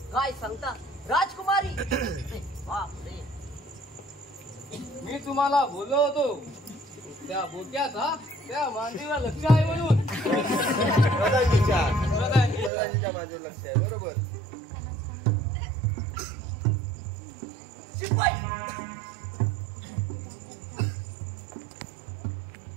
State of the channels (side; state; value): left; drops out; at 12.7 s